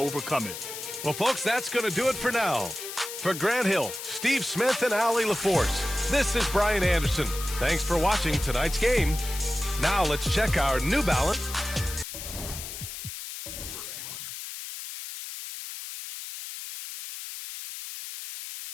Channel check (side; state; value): left; noise; hiss, 9 dB below the sound